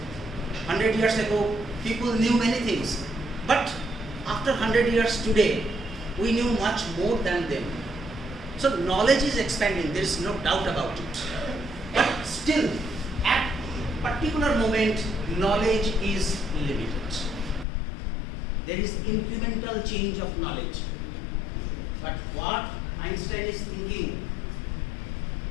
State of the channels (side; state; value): right; drops out; at 17.7 s